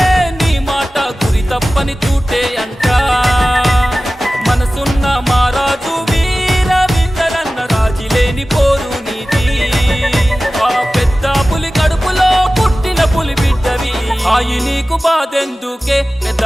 నీ మాట గురి తప్పని తూటే అంట. మనసున్న మారాజు వీర విందరన్న రాజీ లేని పోరు నీది. ఆ పెద్ద పులి కడుపులో పుట్టిన పులి బిడ్డవి. ఆయి నీకు బాధెందుకే పెద్ద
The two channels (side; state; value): both; normal; correlation 0.96